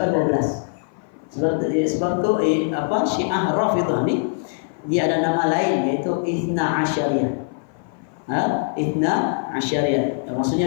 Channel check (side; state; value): right; silent; 56 dB below the other